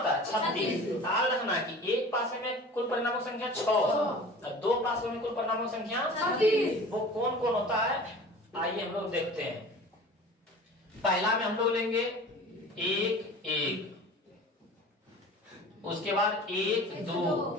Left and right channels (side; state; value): both; normal; correlation 0.40